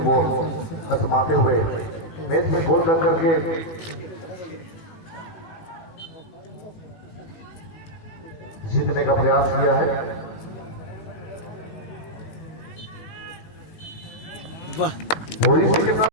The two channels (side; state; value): right; late; 19 ms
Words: वो आजमाते हुए मैच में गोल रख करके जीतने का प्रयास किया है। वाह थोड़ी सी के साथ